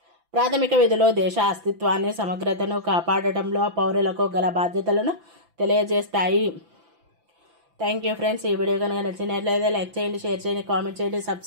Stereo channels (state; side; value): late; left; 5.9 ms